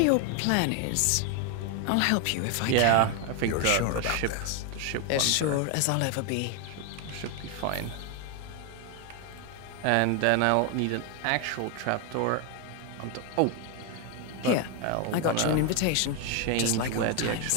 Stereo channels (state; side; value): different; both; correlation 0.01